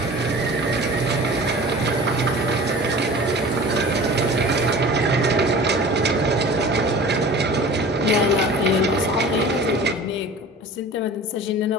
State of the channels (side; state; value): both; normal; correlation 0.41